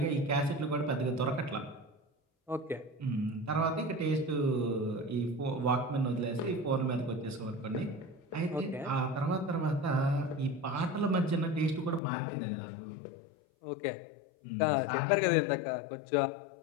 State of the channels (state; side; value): drops out; right; at 12.0 s